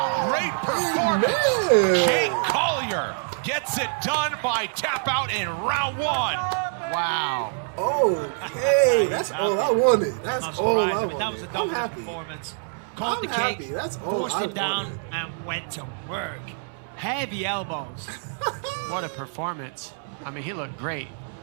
great performance? Jake Collier gets it done by tap out in round 1. Wow. Okay, that's all I wanted. That's all I wanted. That was a dominant performance. Caught the kick, forced him down, and went to work. Heavy elbows. What a performance. I mean, he looked great.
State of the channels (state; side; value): silent; left; digital silence